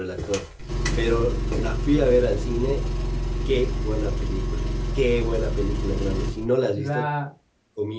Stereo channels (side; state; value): both; identical; correlation 1.00